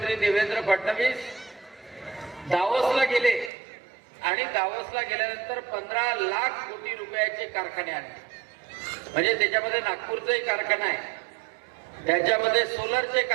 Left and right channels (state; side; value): drops out; left; at 3.5 s